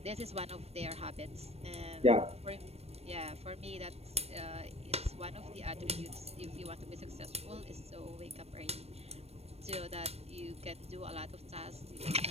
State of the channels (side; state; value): left; late; 0.30 ms